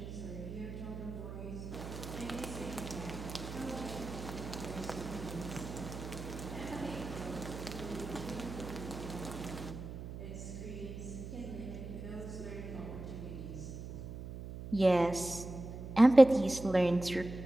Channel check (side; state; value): right; noise; hum, 9 dB below the sound